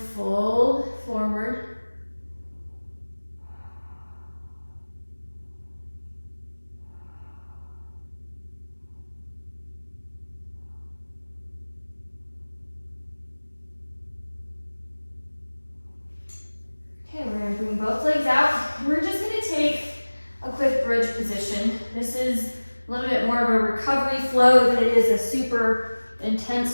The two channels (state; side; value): inverted; both; correlation -1.00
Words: fold forward. Okay, we're going to bring both legs out. We're just going to take a quick bridge position. This is a little bit more of a recovery flow than it is a super